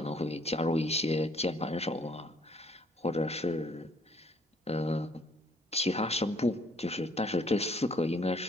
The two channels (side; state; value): both; normal; correlation 0.62